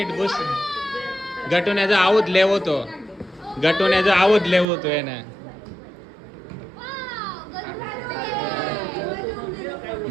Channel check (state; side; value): drops out; left; at 4.7 s